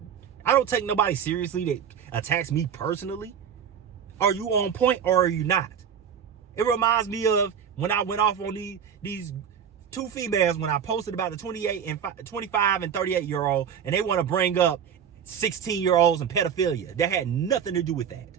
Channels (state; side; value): quieter; left; 7.9 dB